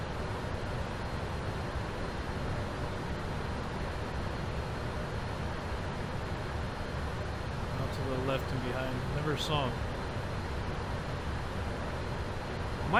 Left and behind. Never saw him.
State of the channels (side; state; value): both; identical; correlation 1.00